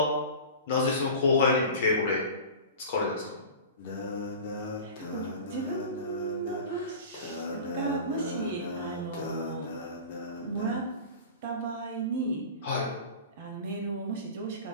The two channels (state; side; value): inverted; both; correlation -0.35